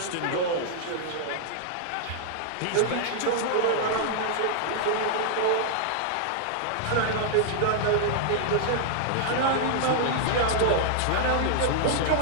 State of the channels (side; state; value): both; different; correlation -0.01